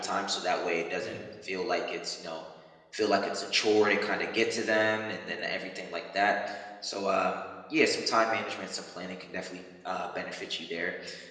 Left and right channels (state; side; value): identical; both; correlation 1.00